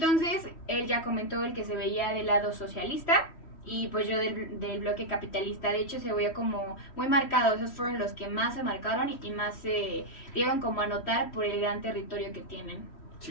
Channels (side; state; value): right; late; 3.1 ms